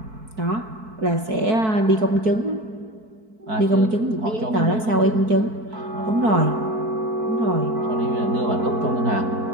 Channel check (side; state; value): left; late; 4.6 ms